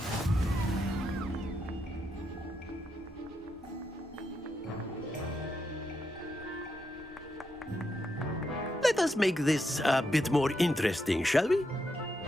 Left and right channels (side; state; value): both; normal; correlation 0.82